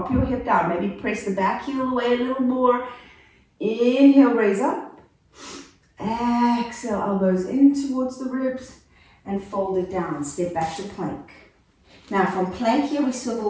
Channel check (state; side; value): identical; both; correlation 1.00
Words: your hip down, maybe press the back heel away a little more. Inhale, raise up. Exhale, elbows in towards the ribs and fold it down. Step back to plank. Now from plank here, we